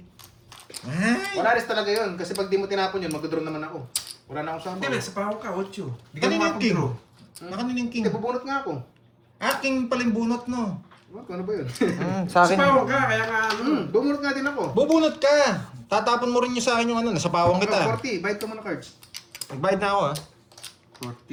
Ay, Wala rin talaga yun. Kasi pag di mo tinapon yun, mag-draw naman ako. Wala na akong Hindi, sample. nasa pahaw ka, 8. Di ka kanina yung king. makapag-draw. Nakanin yung king. Hindi, bubunot nga ako. King pala yung bunot, no? What? Ano ba yun? Sa Sa akin. pahaw ka, kaya nga ano. Bubunot nga din ako. Bubunot ka. Tatapon mo rin yung sa akin yung ano, nasa pawang kita. 40. Bayad ka muna cards. Nagbayad na ako, ah.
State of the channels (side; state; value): both; identical; correlation 1.00